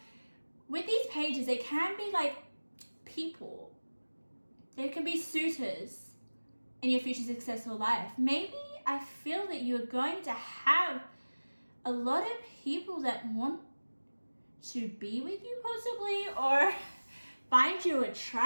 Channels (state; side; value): inverted; both; correlation -1.00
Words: with these pages, they can be like people. They can be suitors in your future successful life. Maybe I feel that you're going to have a lot of people that want to be with you possibly, or find you